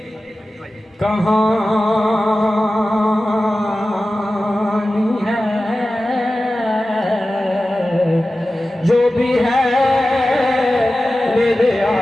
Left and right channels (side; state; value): both; normal; correlation 0.95